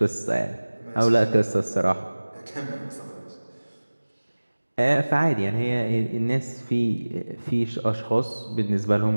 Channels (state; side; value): inverted; both; correlation -1.00